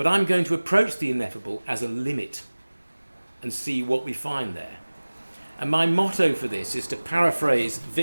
I'm going to approach the ineffable as a limit and see what we find there. And my motto for this is to paraphrase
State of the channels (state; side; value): inverted; both; correlation -1.00